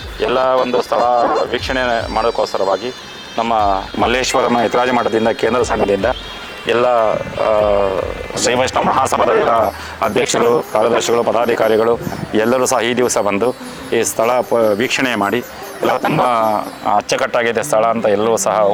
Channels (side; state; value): both; identical; correlation 1.00